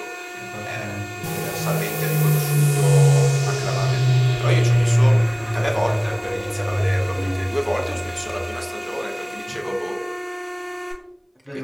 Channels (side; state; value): both; identical; correlation 1.00